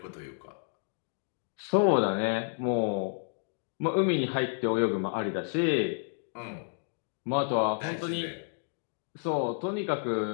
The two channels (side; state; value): right; silent; digital silence